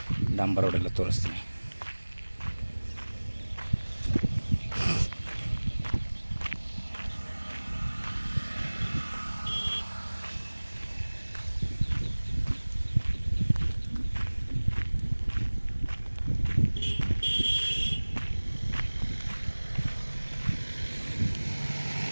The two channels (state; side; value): inverted; both; correlation -1.00